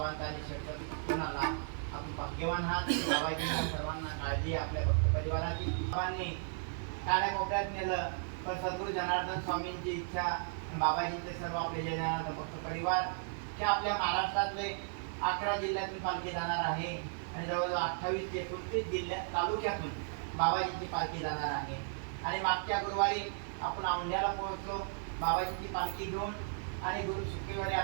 आणि शब्द कोणाला आपण भाग्यवान आहात. बाबाजींना सर्वांना काळजी आपल्या भक्त परिवाराची. बाबांनी काड्या कोपऱ्यात नेलं पण सद्गुरू जनार्दन स्वामींची इच्छा बाबाजींचे सर्व आपले जय जनार्दन भक्त परिवार जे आपल्या महाराष्ट्रातले 11 जिल्ह्यातून पालखी जाणार आहे आणि जवळजवळ 28 ते 29 जिल्ह्यात तालुक्यातून बाबाजींची पालखी जाणार आहे. आणि मागच्या गुरुवारी आपण औंढ्याला पोहोचलो बाबाजींची पालखी घेऊन आणि गुरु शुक्रवारी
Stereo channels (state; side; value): silent; left; 54 dB below the other